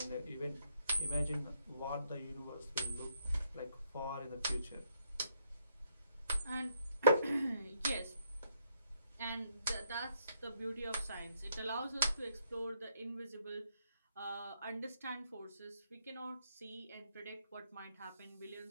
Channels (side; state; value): both; inverted; correlation -0.74